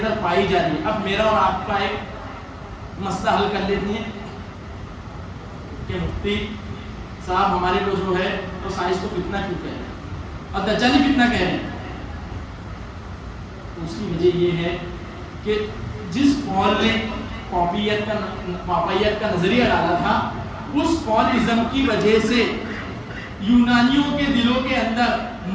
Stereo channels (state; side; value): identical; both; correlation 1.00